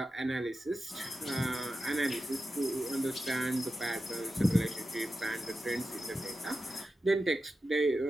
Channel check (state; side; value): normal; both; correlation 0.92